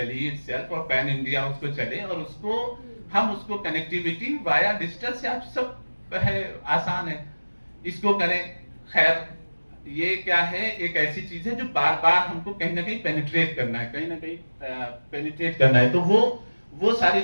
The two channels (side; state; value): both; inverted; correlation -1.00